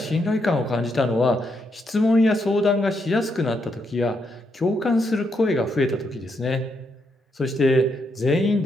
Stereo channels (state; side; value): normal; both; correlation 0.79